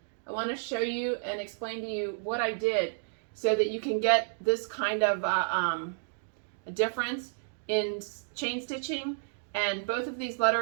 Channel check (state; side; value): silent; left; digital silence